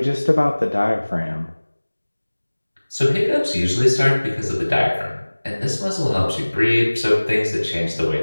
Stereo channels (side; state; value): both; inverted; correlation -1.00